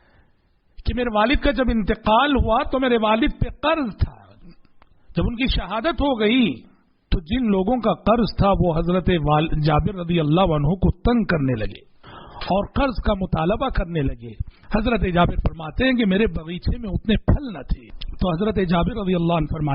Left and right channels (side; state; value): both; identical; correlation 1.00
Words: کہ میرے والد کا جب انتقال ہوا تو میرے والد پہ قرض تھا. جب ان کی شہادت ہو گئی تو جن لوگوں کا قرض تھا وہ حضرت جابر رضی اللہ عنہ کو تنگ کرنے لگے اور قرض کا مطالبہ کرنے لگے. حضرت جابر فرماتے ہیں کہ میرے باغیچے میں اتنے پھل نہ تھے. تو حضرت جابر رضی اللہ عنہ